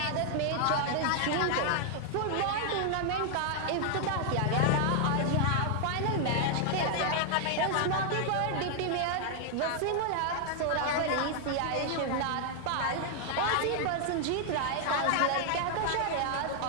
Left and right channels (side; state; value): both; different; correlation 0.00